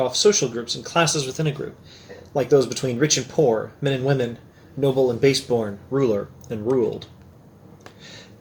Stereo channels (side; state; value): both; identical; correlation 1.00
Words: off social groups and classes within a group, like those between rich and poor, men and women, noble and baseborn, ruler and ruled.